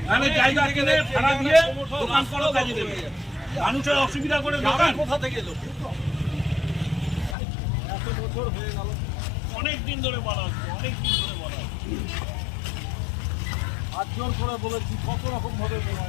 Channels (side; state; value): right; drops out; at 7.4 s